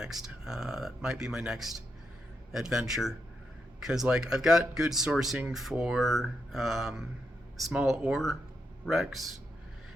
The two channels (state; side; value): normal; both; correlation 0.83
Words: That might be my next adventure, because like I've got good sourcing for small ore wrecks,